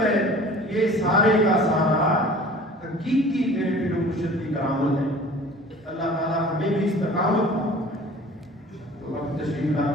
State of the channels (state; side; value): normal; both; correlation 0.45